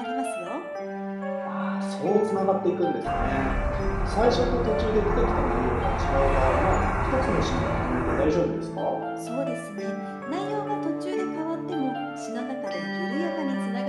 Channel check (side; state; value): both; identical; correlation 1.00